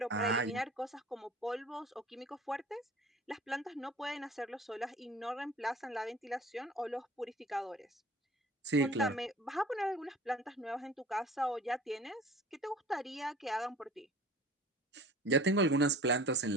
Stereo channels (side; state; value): both; normal; correlation 0.45